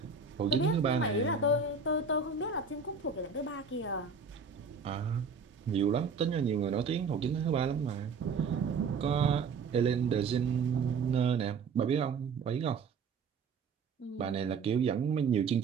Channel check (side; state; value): left; quieter; 5.1 dB